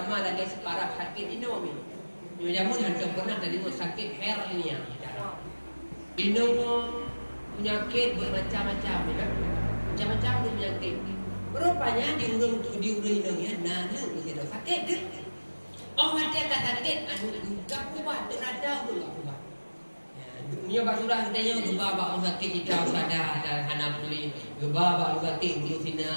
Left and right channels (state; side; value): inverted; both; correlation -1.00